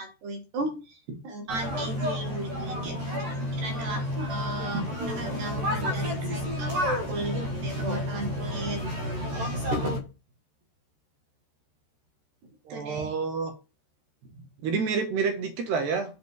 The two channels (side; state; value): left; late; 13 ms